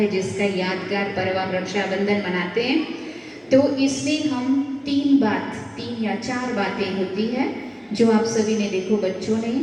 जिसका यादगार पर्व हम रक्षाबंधन मनाते हैं। तो इसमें हम तीन या चार बातें होती है जो आप सभी ने देखो, बच्चों ने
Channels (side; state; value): both; identical; correlation 1.00